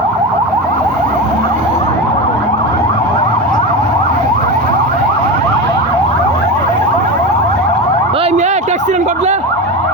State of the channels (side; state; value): both; normal; correlation 0.22